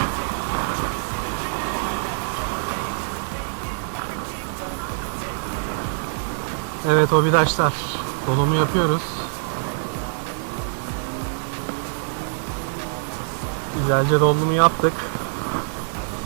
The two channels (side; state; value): left; silent; 60 dB below the other